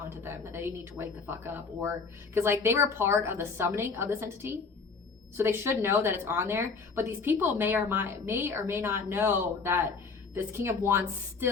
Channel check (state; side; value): quieter; right; 4.8 dB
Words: to them, that they need to wake the fuck up. Or because like they were part of the summoning of this entity, so they should know that it's on there. But these people may or may not know that this King of Wands